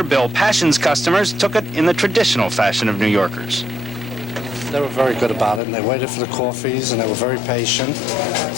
Bill Passion's customers, took it in the traditional fashion of New Yorkers. They were very good about it, and they waited for the coffees, and they were very patient.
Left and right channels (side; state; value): right; drops out; at 5.6 s